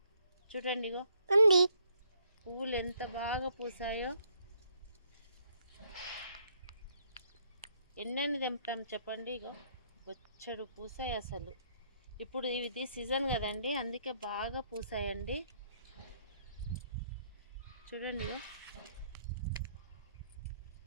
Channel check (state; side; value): inverted; both; correlation -0.70